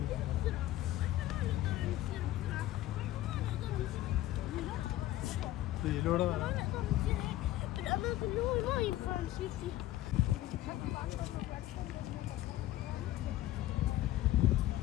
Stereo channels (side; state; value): right; quieter; 14.8 dB